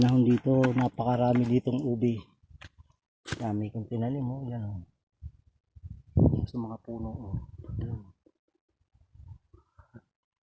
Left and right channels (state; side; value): identical; both; correlation 1.00